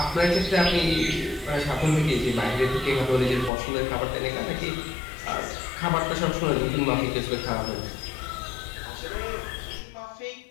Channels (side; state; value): right; drops out; at 3.5 s